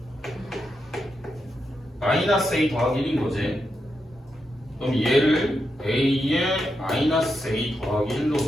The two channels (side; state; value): both; normal; correlation 0.85